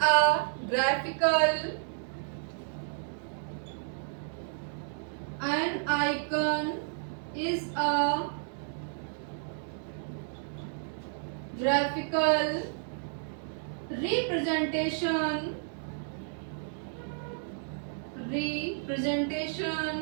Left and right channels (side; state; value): left; silent; digital silence